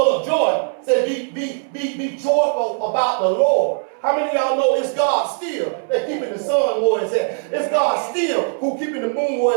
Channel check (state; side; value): silent; left; 65 dB below the other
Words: of joy. Say, be joyful about the Lord. How many of y'all know it's God still that keeping the sun where it's at? It's God still who keeping the moon